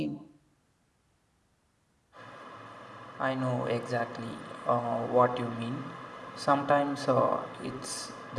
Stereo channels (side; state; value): both; identical; correlation 1.00